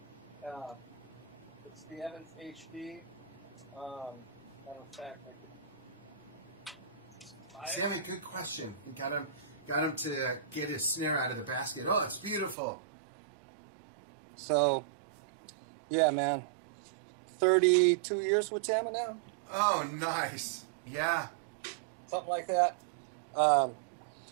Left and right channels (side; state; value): left; drops out; at 12.6 s